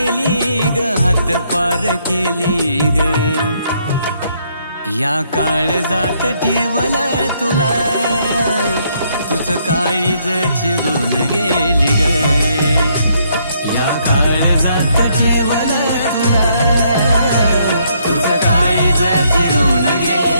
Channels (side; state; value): both; inverted; correlation -0.71